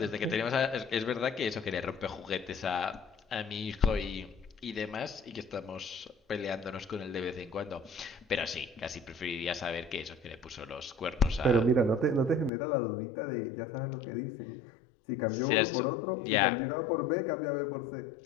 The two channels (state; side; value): drops out; right; at 12.5 s